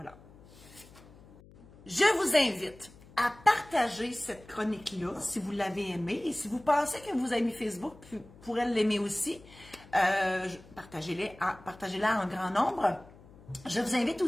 Je vous invite à partager cette chronique-là si vous l'avez aimée. Et si vous pensez que vos amis Facebook pourraient l'aimer aussi, partagez-la en grand nombre. Je vous invite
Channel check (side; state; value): left; noise; hum, 23 dB below the sound